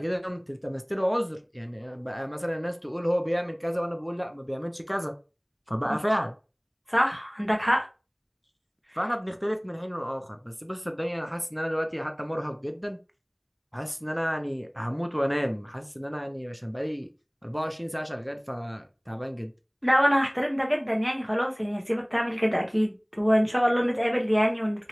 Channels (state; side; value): identical; both; correlation 1.00